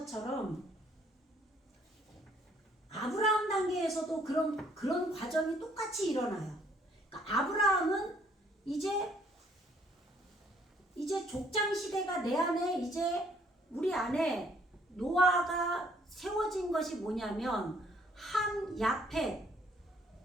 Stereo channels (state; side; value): normal; both; correlation 0.64